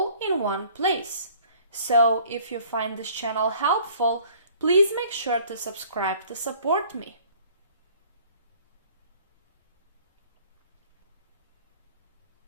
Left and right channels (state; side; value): inverted; both; correlation -0.54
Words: in one place. So if you find this channel helpful, please make sure to subscribe to support me.